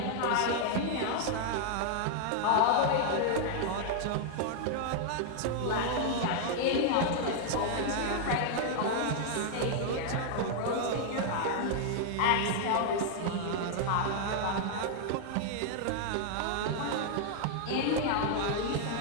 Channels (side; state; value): both; different; correlation 0.00